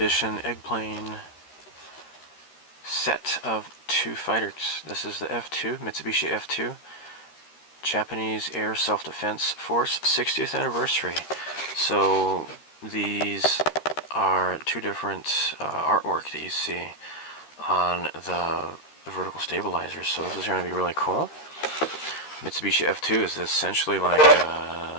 Eggplane set of 2 fighters. This is the F-2, Mitsubishi F-2, Japanese Air Self-Defense Force 60th anniversary. So these are 2 different artwork that you see on the vertical stabilizers. So this is going to be really cool. Mitsubishi F-2 is essentially like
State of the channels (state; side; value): late; right; 13 ms